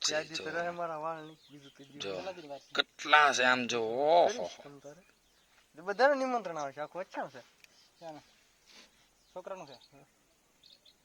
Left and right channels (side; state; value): both; identical; correlation 1.00